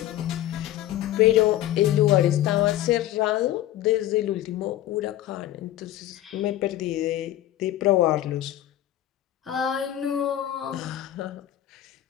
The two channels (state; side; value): quieter; right; 13.4 dB